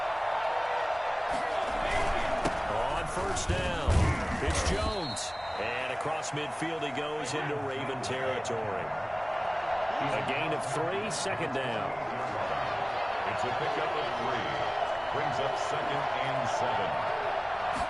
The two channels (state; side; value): identical; both; correlation 1.00